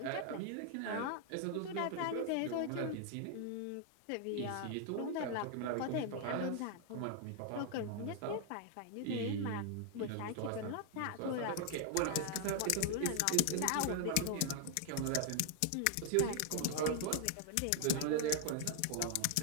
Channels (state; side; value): different; both; correlation 0.00